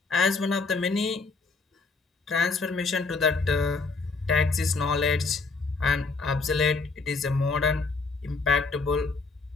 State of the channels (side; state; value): right; quieter; 4.1 dB